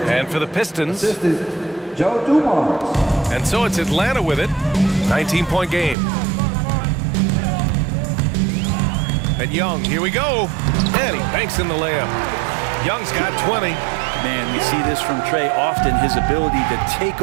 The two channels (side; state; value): left; drops out; at 6.0 s